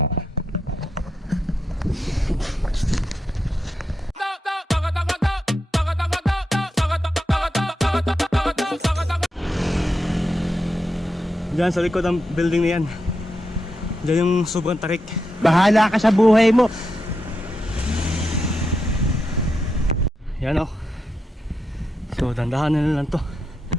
Diyan sa likod ng building na yan, diyan yung sobrang tarik. Bahala ka sa buhay mo. Yan o. So dandahanin na lang to.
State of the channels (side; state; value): both; normal; correlation 0.86